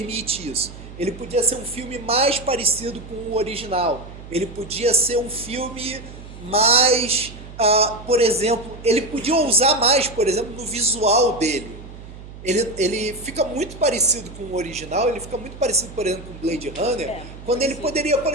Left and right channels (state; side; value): noise; right; hum, 15 dB below the sound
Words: isso. Ele podia ser um filme mais parecido com o original. Ele podia ser um filme mais... por exemplo, ele podia ousar mais, por exemplo, no visual dele. Ele fica muito parecido com o original, ele fica muito parecido, por exemplo, com Blade Runner, quando ele poderia, por